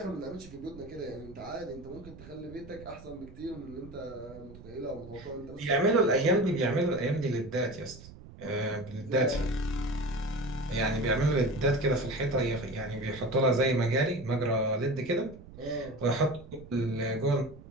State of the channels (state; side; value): noise; right; rumble, 17 dB below the sound